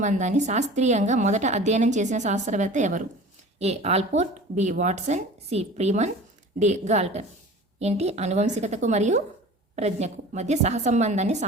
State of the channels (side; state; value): both; normal; correlation 0.40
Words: శాస్త్రీయంగా మొదట అధ్యయనం చేసిన శాస్త్రవేత్త ఎవరు? A Allport, B Watson, C Freeman, D Galton. ఏంటి? అనువంశికతకు మరియు ప్రజ్ఞకు మధ్య సహసంబంధాన్ని